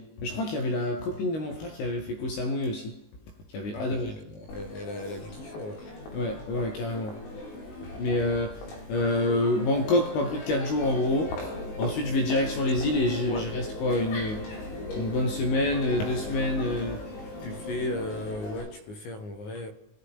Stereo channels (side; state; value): right; late; 19 ms